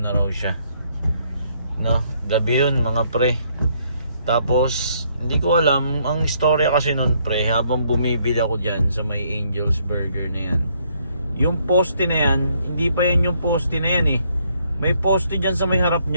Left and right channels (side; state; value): both; inverted; correlation -0.69